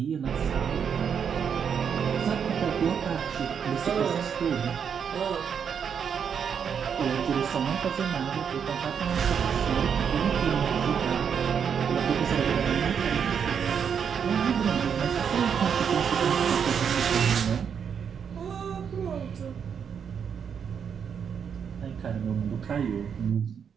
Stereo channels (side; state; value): left; quieter; 7.3 dB